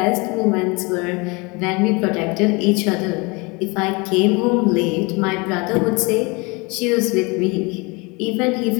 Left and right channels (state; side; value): quieter; right; 27.4 dB